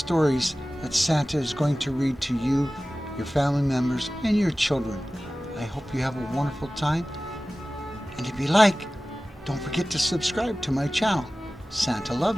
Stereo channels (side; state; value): both; normal; correlation 0.97